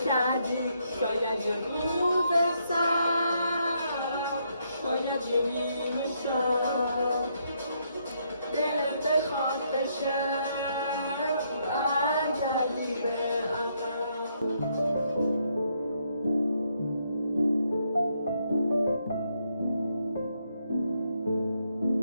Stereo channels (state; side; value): inverted; both; correlation -0.75